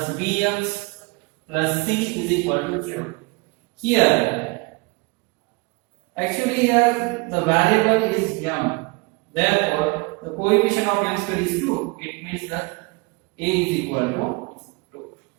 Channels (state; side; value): quieter; left; 27.8 dB